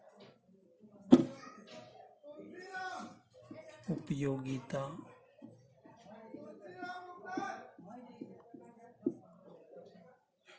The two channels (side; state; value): both; identical; correlation 1.00